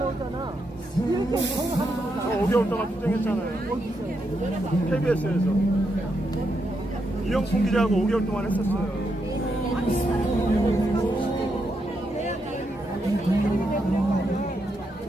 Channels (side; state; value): both; normal; correlation 0.81